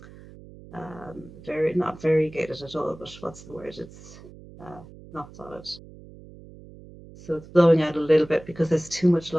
very not variegated at all, but what's the word? It's not solid. So it's blowing out a little bit because there's too much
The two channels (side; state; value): right; noise; hum, 19 dB below the sound